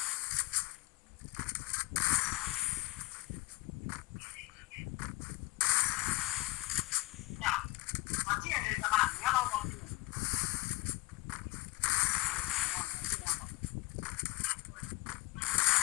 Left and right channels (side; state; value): right; quieter; 20.6 dB